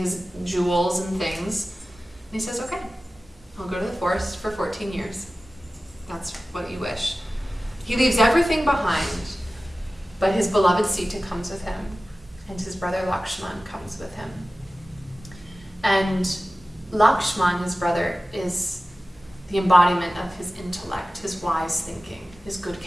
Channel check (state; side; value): normal; both; correlation 0.96